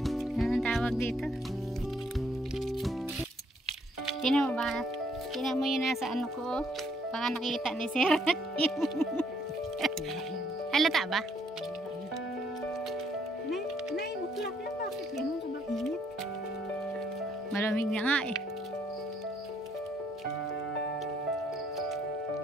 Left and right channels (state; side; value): normal; both; correlation 0.68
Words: Ano ang tawag dito? Tinan mo ba? Tinan mo yun nasa ano ko. Baka nakita ni Sir. Halata ba? 9 o'clock na, bakit yan? Sobrang init. Malamig na nga eh.